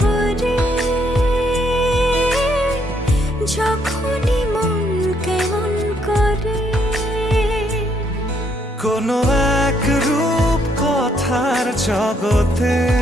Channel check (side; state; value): both; normal; correlation 0.72